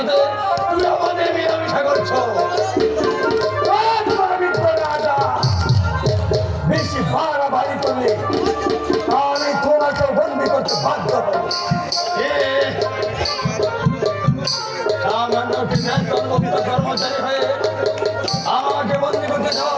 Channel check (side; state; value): both; identical; correlation 1.00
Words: তুমি আমাদের মেলামেশা করছো। রাজা বেশি বাড়াবাড়ি করলে আমি তোমাকে বন্দি করতে বাধ্য হব। সামান্য একটি বেতনমুক্ত কর্মচারী হয়ে আমাকে বন্দি করতে চাও?